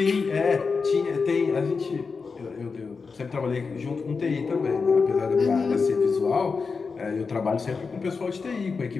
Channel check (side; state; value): right; quieter; 4.9 dB